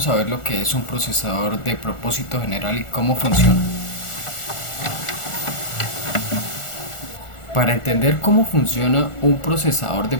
a ver lo que es un procesador de propósito general y cómo funciona. Para entender cómo funciona un procesador de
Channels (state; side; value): late; right; 1.4 ms